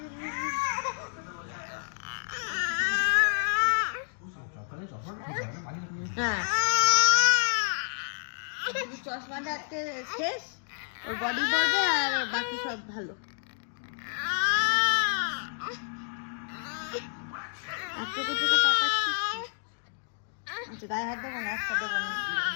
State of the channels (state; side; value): silent; right; digital silence